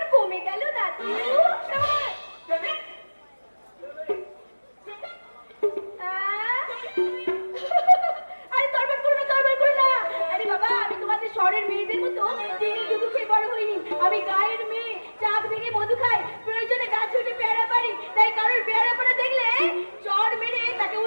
কমে গেল দাদু? আরে তরবার করো না, তরবার করো না। আরে বাবা, আমি তোমাদের শহরের মেয়েদের মতো চিনি দুধু খেয়ে বড় হইনি। আমি গায়ের মেয়ে, চাক ভেঙে মধু খাই, প্রয়োজনে গাছে উঠে পেয়ারা পারি। তাই কারোর পেয়ারা পাড়া দেখলে চড় মেরে তাকে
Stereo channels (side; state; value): both; inverted; correlation -1.00